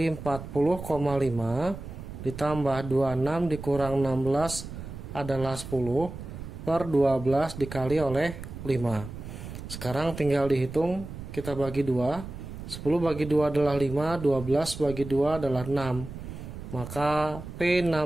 40,5 ditambah 26 dikurang 16 adalah 10 per 12 dikali oleh 5. Sekarang tinggal dihitung, kita bagi 2. 10 bagi 2 adalah 5, 12 bagi 2 adalah 6. Maka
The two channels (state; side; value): noise; right; rumble, 10 dB below the sound